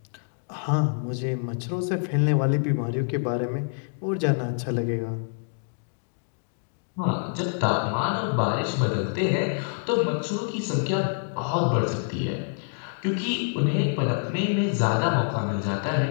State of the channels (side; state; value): right; silent; digital silence